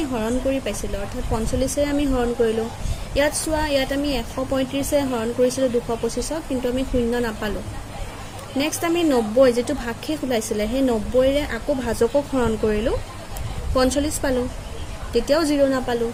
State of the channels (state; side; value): identical; both; correlation 1.00